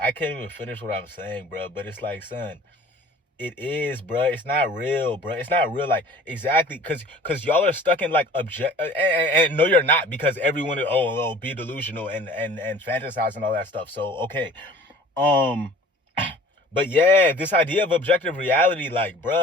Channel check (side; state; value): both; normal; correlation 0.46